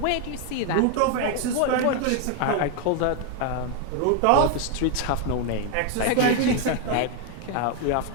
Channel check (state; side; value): different; both; correlation 0.01